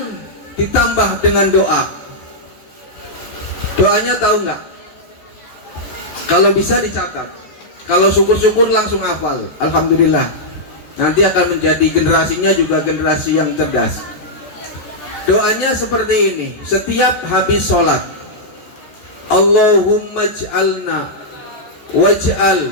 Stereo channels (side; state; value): right; late; 14 ms